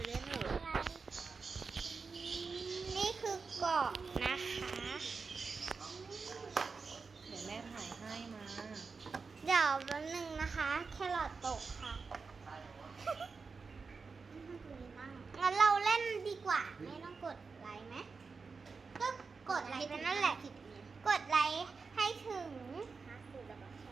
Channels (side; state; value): left; quieter; 4.8 dB